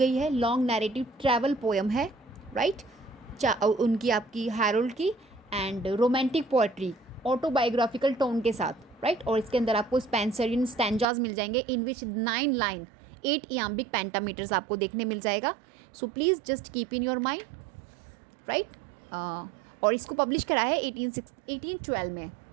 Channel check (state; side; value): drops out; left; at 11.1 s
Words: है। लॉन्ग नैरेटिव ट्रैवल पोएम है, राइट? उनकी आपकी हैरोल्ड की, and romantic poetry autobiographical tone के साथ, राइट? और इसके अंदर आपको स्पेंसरियन स्टैंजाज मिल जाएंगे इन विच 9 लाइन 8 इयाम्बिक पेंटामीटर्स आपको देखने मिल जाएगा। सो please just keep in your mind, right? और इसको पब्लिश करा है 1812 में।